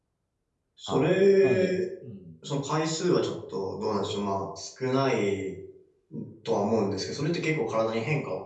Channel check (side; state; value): both; identical; correlation 1.00